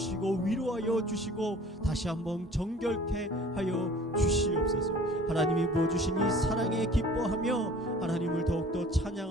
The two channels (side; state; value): both; normal; correlation 0.49